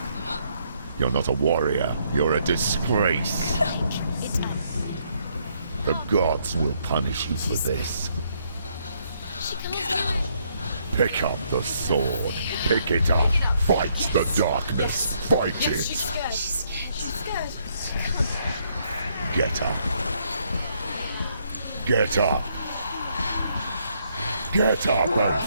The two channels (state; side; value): inverted; both; correlation -0.72